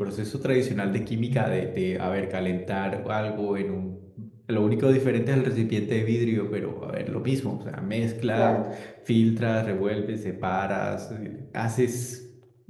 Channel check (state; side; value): identical; both; correlation 1.00